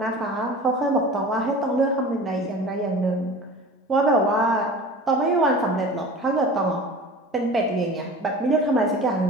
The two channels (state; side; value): normal; both; correlation 0.38